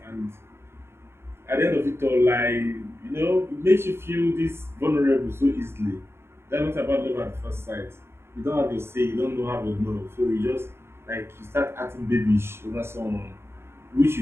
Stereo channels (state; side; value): late; left; 0.12 ms